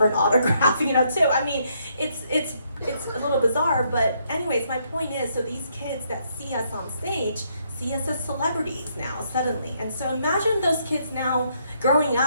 an autograph, too. I mean, it's a little bizarre, but anyways, my point is, so these kids that see us on stage see us as celebrities now, suddenly. And so imagine those kids now growing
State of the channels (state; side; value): inverted; both; correlation -0.73